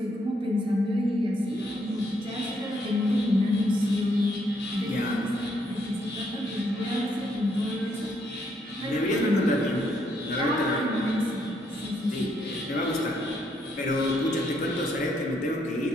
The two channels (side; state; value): both; normal; correlation 0.73